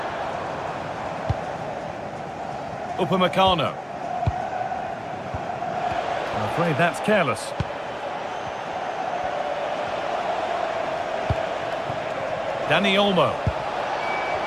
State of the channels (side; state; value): both; identical; correlation 1.00